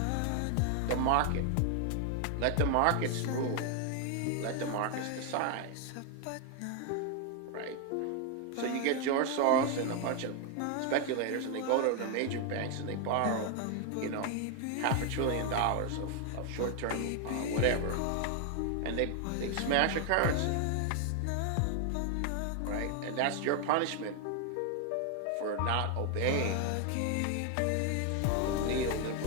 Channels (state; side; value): different; both; correlation 0.00